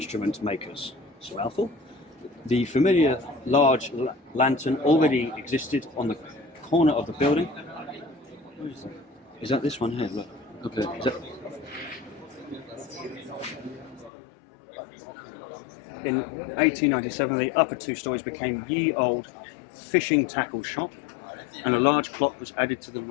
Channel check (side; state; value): right; drops out; at 14.1 s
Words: makers. So, Alpha? The familiar large lantern already existed on the corner of the building. Where is that? Is that this one here? Look. Okay. Is that... In 1897, the upper two stories became ye old fishing tackle shop, and a large clock was added to the